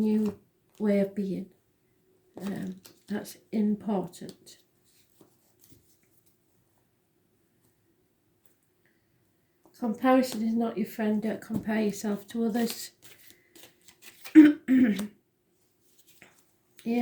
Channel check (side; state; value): both; identical; correlation 1.00